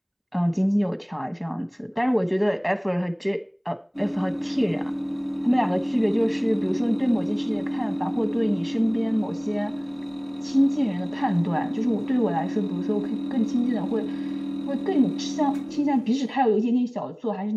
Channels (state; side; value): identical; both; correlation 1.00